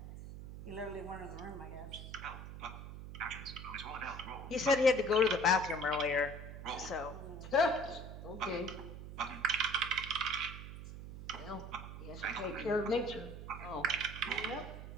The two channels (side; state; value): right; noise; hum, 10 dB below the sound